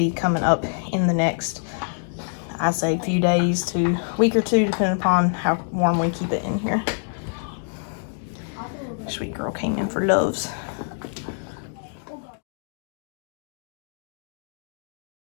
coming up in the next, I say, few days to week or two, depending upon how warm we keep it in here. Sweet girl came in for loves.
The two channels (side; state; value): right; silent; 62 dB below the other